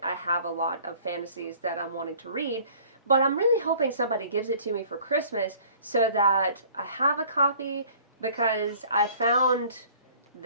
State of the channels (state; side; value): inverted; both; correlation -0.52